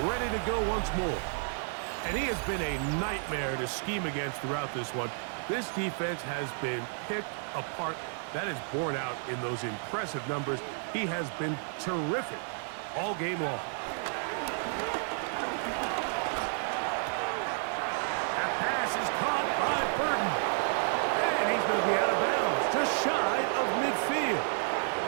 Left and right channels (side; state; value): left; silent; 57 dB below the other